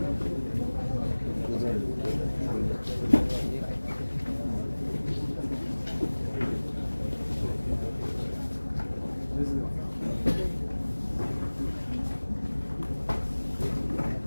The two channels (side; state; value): both; inverted; correlation -1.00